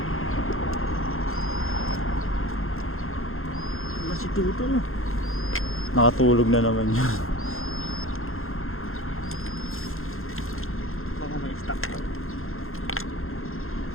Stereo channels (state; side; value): late; right; 0.61 ms